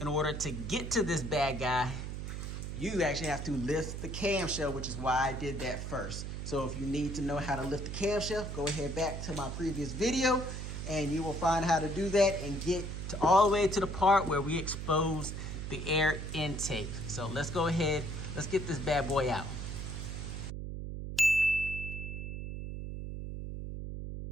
In order to get to this bad guy, you actually have to lift the camshell, which is why I did that first. So if you need to know how to lift the camshell, go ahead back to my previous video and you will find how to do that and get to all the way to the part where we expose the air intake. So let's go ahead, let's get this bad boy out.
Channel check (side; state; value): right; noise; hum, 6 dB below the sound